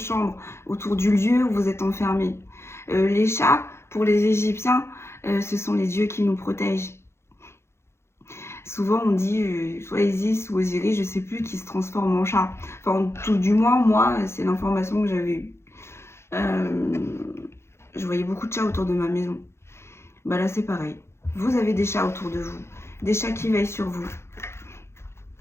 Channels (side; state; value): right; late; 0.13 ms